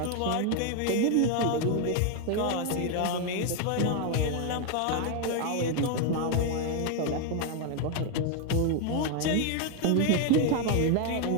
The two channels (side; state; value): both; different; correlation 0.01